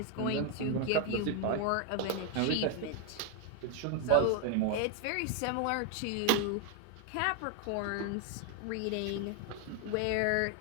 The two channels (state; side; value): different; both; correlation 0.01